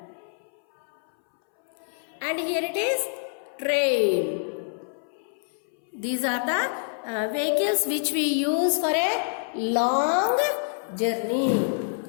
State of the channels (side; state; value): right; silent; 61 dB below the other